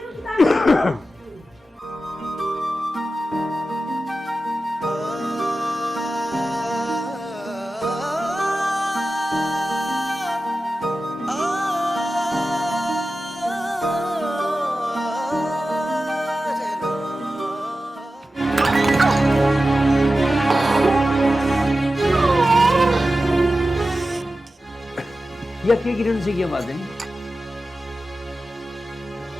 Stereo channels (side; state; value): both; normal; correlation 0.93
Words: या क्या किरण से क्या बात है?